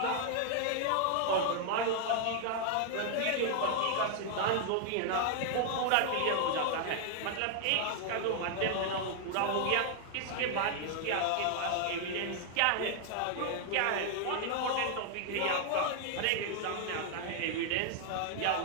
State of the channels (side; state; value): both; different; correlation 0.00